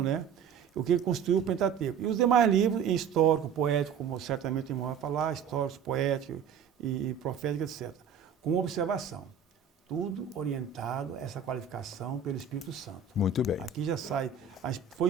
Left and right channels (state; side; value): quieter; left; 6.9 dB